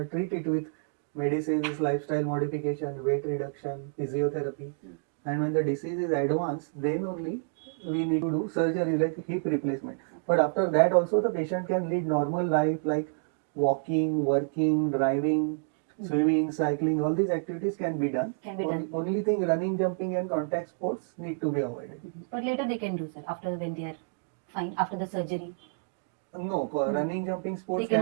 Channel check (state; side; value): silent; left; digital silence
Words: treat it with medicines, lifestyle modification, weight reduction, physiotherapy. And when the disease is advanced, then only we need to do surgery like hip replacement. But after that also the patient can lead normal life like walking, working, driving, swimming, cycling, all these activities can be done. Only thing, running, jumping and contact sports need to be avoided. But later they can do, sir, after when they are fine, after the surgery. No, running, jumping sports